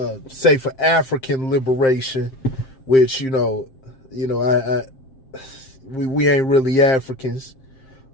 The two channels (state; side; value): late; right; 7.6 ms